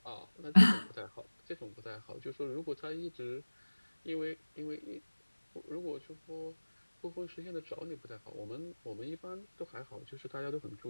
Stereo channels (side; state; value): both; inverted; correlation -1.00